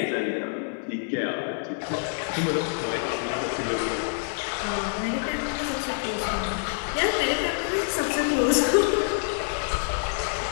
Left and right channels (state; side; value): silent; right; 60 dB below the other